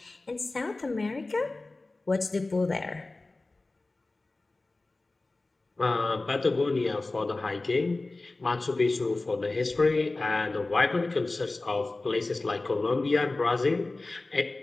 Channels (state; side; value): quieter; right; 3.2 dB